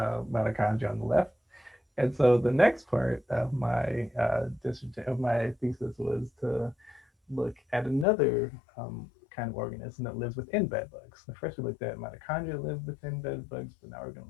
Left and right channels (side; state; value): right; drops out; at 8.1 s